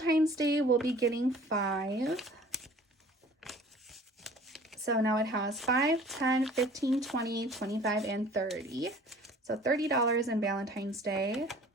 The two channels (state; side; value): normal; both; correlation 0.49